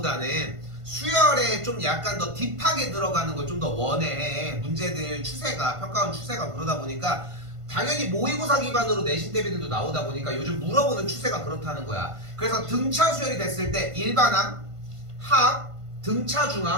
수열에 좀 약간 더 딥하게 들어가는 걸 좀 더 원해. 문제들 추세가 평가원 추세가 그러다 보니까 당연히 모의고사 기반으로 내신 대비들도 나오다 보니까 요즘 물어보는 추세가 그렇다는 거야. 그래서 등차 수열이 됐을 때 일반항, 합, 등차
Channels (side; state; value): left; late; 1.5 ms